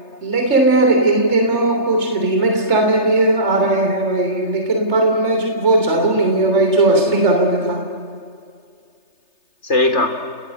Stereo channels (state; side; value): late; right; 3.3 ms